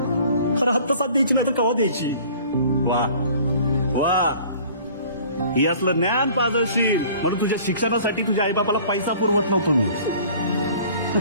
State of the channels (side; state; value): both; inverted; correlation -0.50